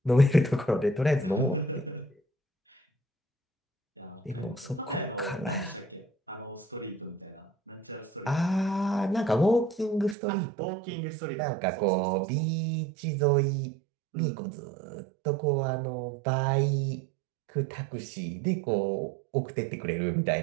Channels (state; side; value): drops out; left; at 10.2 s